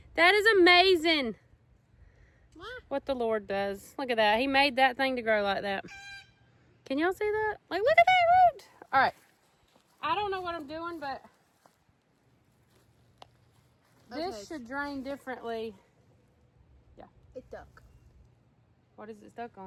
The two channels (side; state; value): both; identical; correlation 1.00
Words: That is amazing what the Lord does. Look at that. He made that thing to grow like that. Can y'all see that? Like, look at that root. All right. I don't know what I'm doing, but this should drain differently. Yeah. It's stuck. What is it stuck